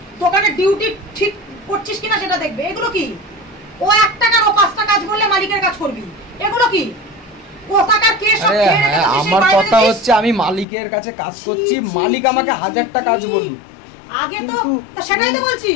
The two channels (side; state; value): right; drops out; at 10.7 s